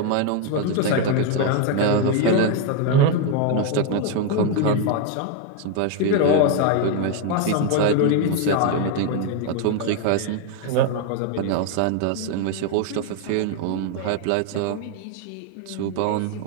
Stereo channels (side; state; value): both; different; correlation 0.01